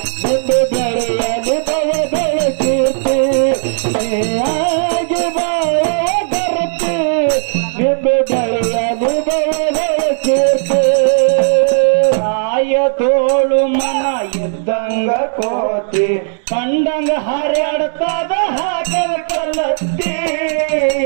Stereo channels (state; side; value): silent; left; digital silence